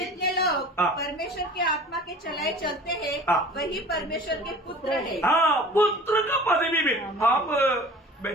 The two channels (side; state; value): both; normal; correlation 0.43